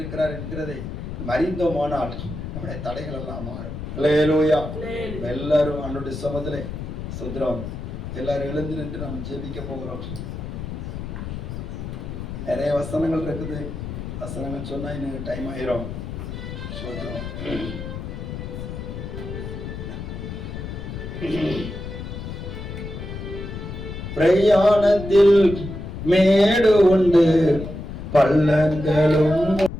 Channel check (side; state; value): left; noise; rumble, 7 dB below the sound